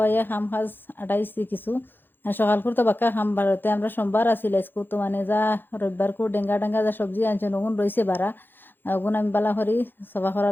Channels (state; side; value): late; right; 0.097 ms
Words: খাম খাজ আটাইছি কিছু আর সকাল করতে বাক্কা খাম বারোতে আমরা সোমবার আসিল আজকে তো মানে যা রবিবার কো ডেঙ্গা ডেঙ্গা যা সবজি আনছে নগুন রয়েছে বারা ওগুন আমি বালা করি সফা করা